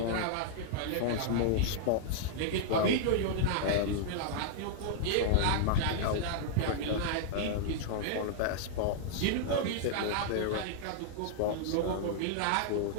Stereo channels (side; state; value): both; different; correlation -0.01